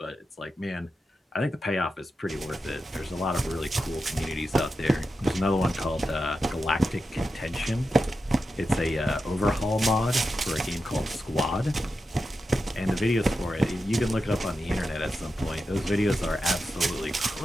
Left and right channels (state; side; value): normal; both; correlation 0.89